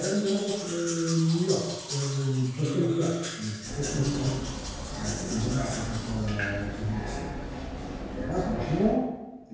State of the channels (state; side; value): identical; both; correlation 1.00